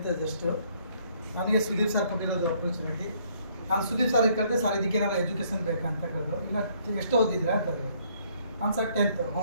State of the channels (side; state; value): both; inverted; correlation -0.66